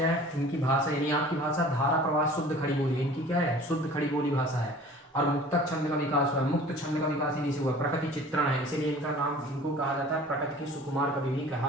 है? इनकी भाषा, यानी आपकी भाषा धारा प्रवाह शुद्ध खड़ी बोली है। इनकी क्या है? शुद्ध खड़ी बोली भाषा है। और मुक्तक छंद का विकास हुआ है। मुक्त छंद का विकास इन्हीं से हुआ। प्रकृति चित्रण है, इसीलिए इनका नाम, इनको कहा जाता है प्रकृति के सुकुमार कवि भी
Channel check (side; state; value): both; normal; correlation 0.45